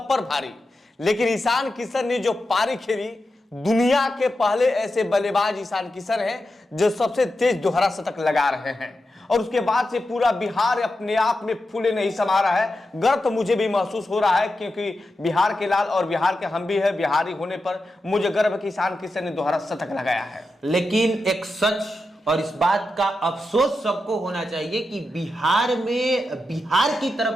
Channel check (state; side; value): normal; both; correlation 0.89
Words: पर भारी। लेकिन ईशान किशन ने जो पारी खेली, दुनिया के पहले ऐसे बल्लेबाज ईशान किशन हैं जो सबसे तेज दोहरा शतक लगा रहे हैं और उसके बाद से पूरा बिहार अपने आप में फूले नहीं समा रहा है। गर्व तो मुझे भी महसूस हो रहा है क्योंकि बिहार के लाल और बिहार के हम भी है। बिहारी होने पर मुझे गर्व है कि ईशान किशन ने दोहरा शतक लगाया है। लेकिन एक सच और इस बात का अफसोस सबको होना चाहिए कि बिहार में बिहार की